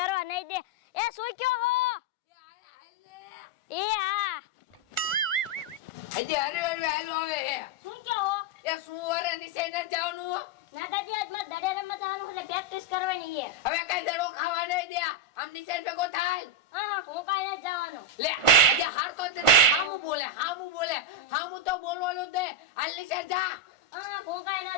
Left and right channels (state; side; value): late; right; 1.4 ms